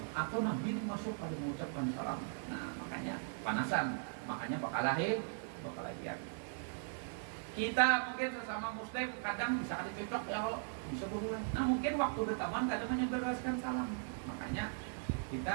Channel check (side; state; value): left; silent; 52 dB below the other